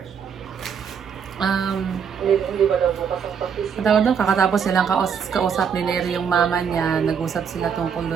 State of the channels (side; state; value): left; quieter; 7.1 dB